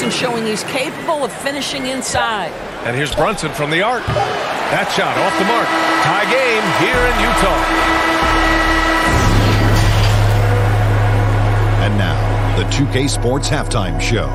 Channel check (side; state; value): both; identical; correlation 1.00